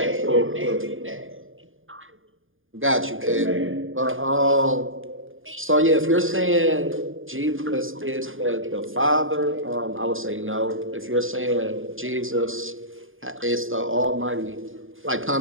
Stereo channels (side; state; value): left; late; 0.59 ms